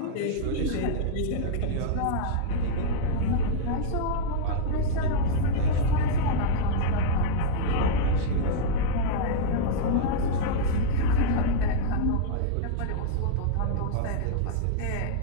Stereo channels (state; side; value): different; both; correlation -0.01